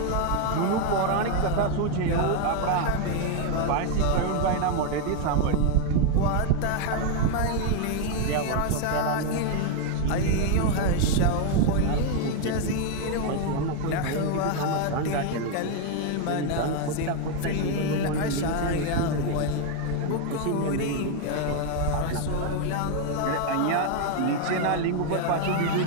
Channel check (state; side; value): different; both; correlation 0.01